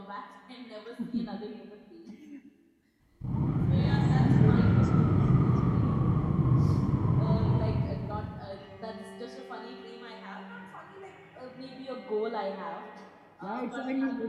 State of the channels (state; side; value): identical; both; correlation 1.00